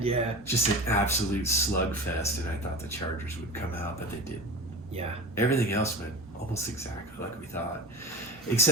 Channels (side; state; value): both; normal; correlation 0.31